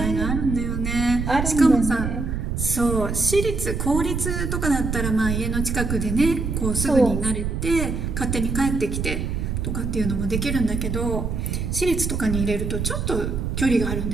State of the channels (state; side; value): noise; right; rumble, 2 dB below the sound